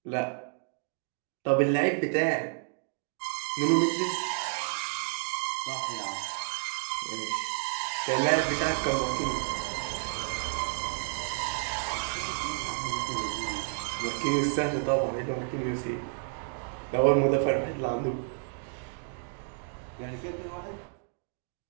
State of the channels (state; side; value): silent; left; 57 dB below the other